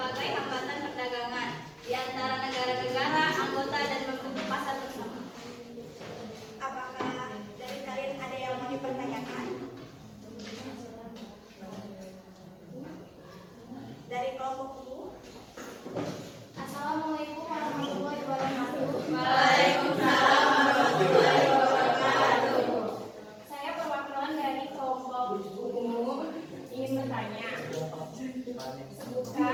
hambatan perdagangan di antara negara-negara anggota dan membentuk pasar bersama. Apakah dari kalian ada yang mau dipertanyakan? Dari kelompok U. Assalamualaikum warahmatullahi wabarakatuh. Waalaikumsalam warahmatullahi wabarakatuh. Saya perwakilan dari kelompok umum ingin bertanya.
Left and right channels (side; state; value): both; identical; correlation 1.00